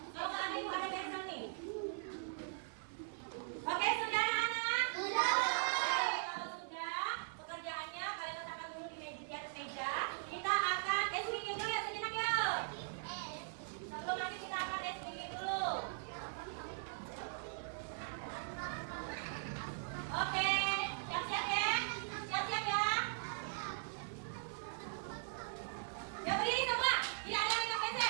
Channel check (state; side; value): silent; left; 51 dB below the other